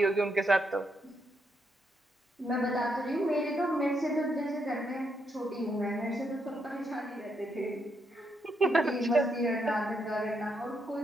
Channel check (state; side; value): normal; both; correlation 0.78